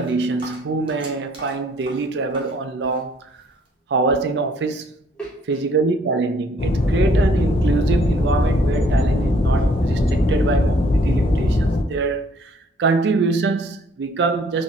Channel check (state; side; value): normal; both; correlation 0.61